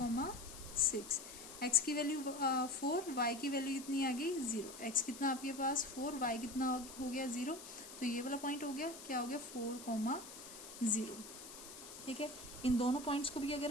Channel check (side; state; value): left; noise; hiss, 13 dB below the sound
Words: x की वैल्यू 4, y की वैल्यू कितनी आ गई 0, x कितना आपके पास 4, y कितना हो गया 0, तो ये वाला पॉइंट हो गया, क्या हो गया 4,0। ठीक है, इन दोनों पॉइंट्स को भी अगर